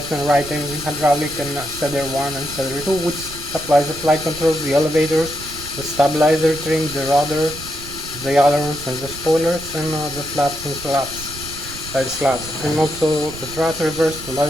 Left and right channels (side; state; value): right; noise; rumble, 14 dB below the sound